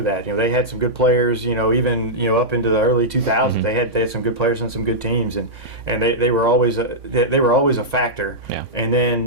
that. They had some good players. Even up into the early 2000s, they had some good players and some good teams, and they were always a factor. Yeah. And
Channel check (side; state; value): left; late; 3.5 ms